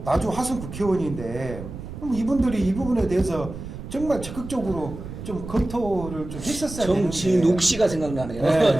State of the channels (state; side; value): noise; right; rumble, 11 dB below the sound